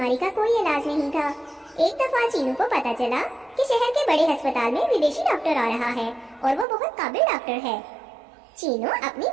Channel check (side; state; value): left; drops out; at 6.7 s